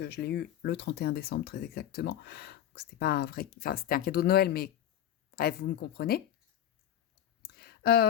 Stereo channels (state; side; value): quieter; right; 11.1 dB